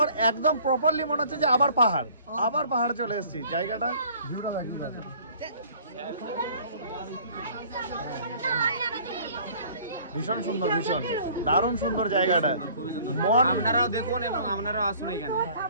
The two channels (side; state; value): both; inverted; correlation -0.53